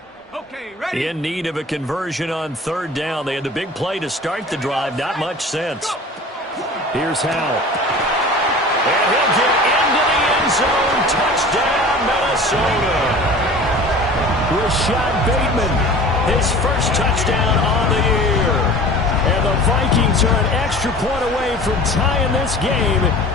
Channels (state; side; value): normal; both; correlation 0.41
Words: Okay, ready? In need of a conversion on third down. They had the big play to start the drive. Not much sense. Here's Howell. And he'll get into the end zone. Touchdown, Minnesota. Rashad Bateman, his first touchdown on the year. And the Vikings are an extra point away from tying this game